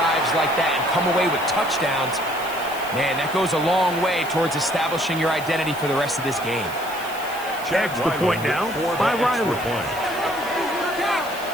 like that and come away with touchdowns. Man, that goes a long way towards establishing your identity for the rest of this game. Extra point now by Riley.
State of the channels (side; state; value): left; noise; hiss, 15 dB below the sound